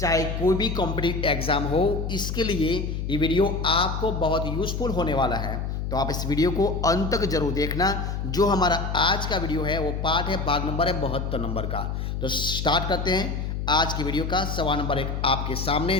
कोई भी कॉम्पिटिटिव एग्जाम हो, इसके लिए ये वीडियो आपको बहुत यूजफुल होने वाला है। तो आप इस वीडियो को अंत तक जरूर देखना। जो हमारा आज का वीडियो है वो पार्ट है, भाग नंबर है 72 नंबर का। तो स्टार्ट करते हैं आज की वीडियो का। सवाल नंबर 1 आपके सामने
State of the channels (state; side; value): noise; left; hum, 3 dB below the sound